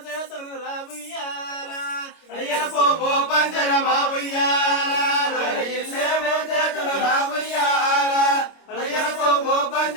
రావుయ్యాల అయ్యల పోపో పంజరమా ఉయ్యాల వారి ఇల్లేమో చేతులు రావుయ్యాల అయ్యల పోపో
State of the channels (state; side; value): late; right; 25 ms